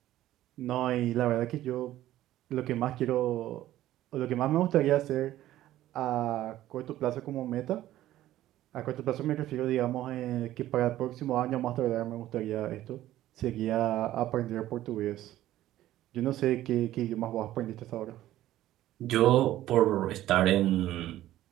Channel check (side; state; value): left; quieter; 14.1 dB